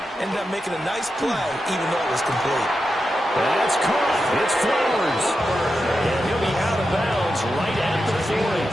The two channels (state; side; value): normal; both; correlation 0.89